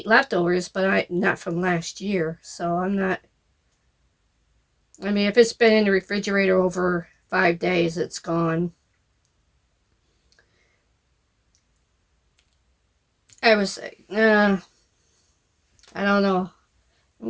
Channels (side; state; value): both; identical; correlation 1.00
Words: leftovers, but not from last year. So I'm not. I mean, if it's been in the refrigerator over 5 days, it's gone. I was, I don't know. I'm